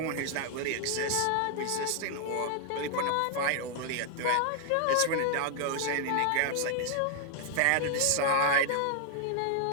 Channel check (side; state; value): both; different; correlation 0.00